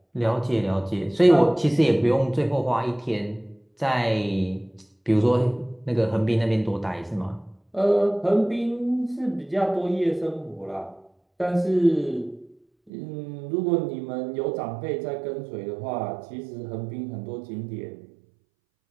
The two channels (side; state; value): left; drops out; at 12.9 s